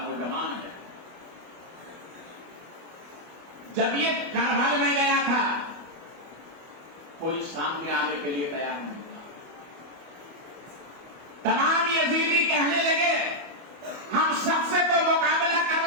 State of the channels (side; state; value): left; late; 25 ms